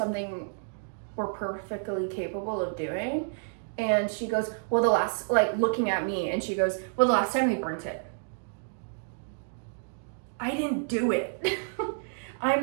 we're perfectly capable of doing. And she goes, well, looking at me, and she goes, well, the last time we burnt it. I didn't do it.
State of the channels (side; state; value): left; silent; digital silence